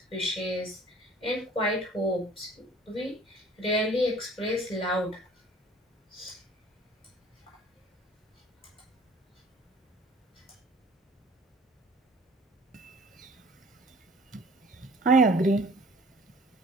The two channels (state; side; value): normal; both; correlation 0.51